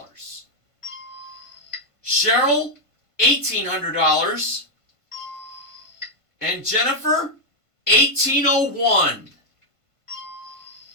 Cheryl, $1,800. And Jennifer, $1,801.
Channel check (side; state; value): right; late; 1.5 ms